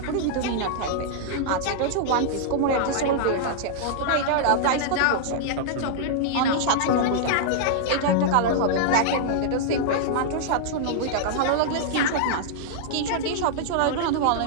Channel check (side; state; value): both; different; correlation -0.01